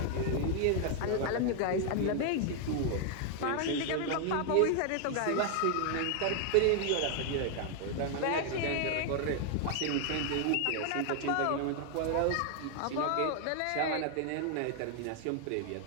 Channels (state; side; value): different; both; correlation 0.00